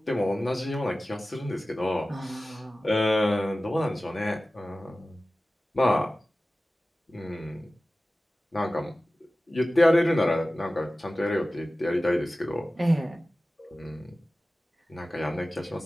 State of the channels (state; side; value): normal; both; correlation 0.96